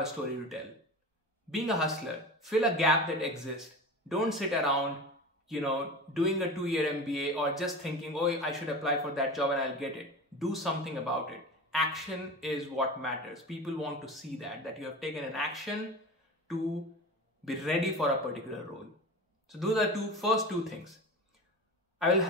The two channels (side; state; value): both; normal; correlation 0.31